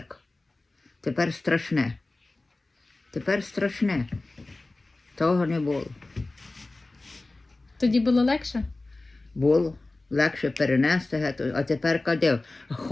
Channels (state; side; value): quieter; right; 3.1 dB